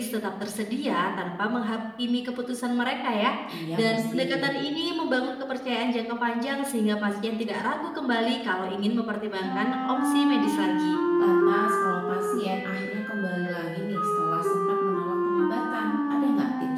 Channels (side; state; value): both; identical; correlation 1.00